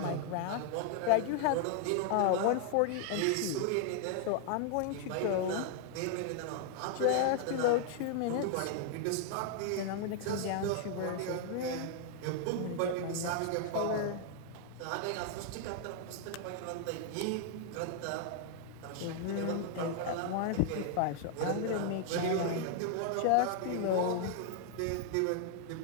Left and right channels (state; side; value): different; both; correlation 0.00